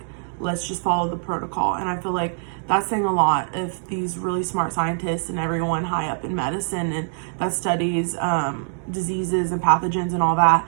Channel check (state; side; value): silent; left; digital silence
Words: let's just follow the protocol. And I feel like that's saying a lot if these really smart scientists and everyone high up in medicine and that studies diseases and pathogens and all that,